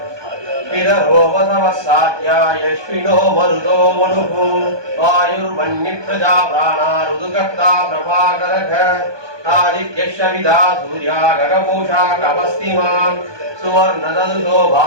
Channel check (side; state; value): left; late; 1.2 ms